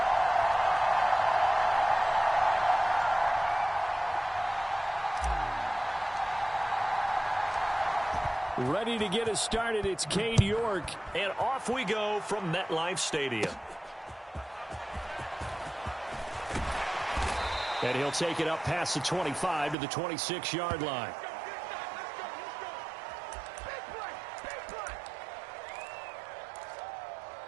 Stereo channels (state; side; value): drops out; left; at 19.8 s